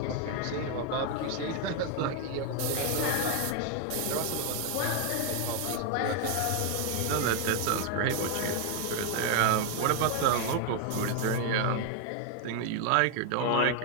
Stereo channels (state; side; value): different; both; correlation 0.01